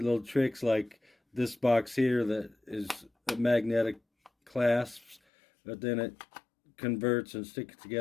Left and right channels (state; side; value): drops out; right; at 5.2 s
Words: little tricks like this box here that is a magnetic clasps, but then it converts and sticks